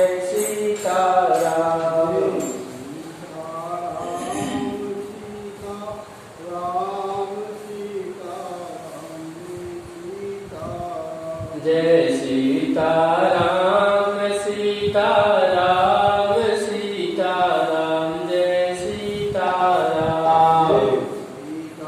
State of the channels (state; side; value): identical; both; correlation 1.00